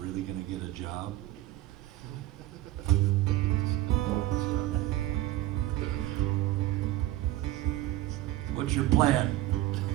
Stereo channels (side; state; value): left; quieter; 15.3 dB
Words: going to get a job. What's your plan?